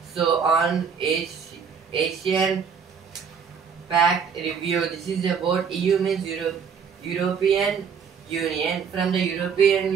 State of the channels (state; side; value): quieter; left; 6.5 dB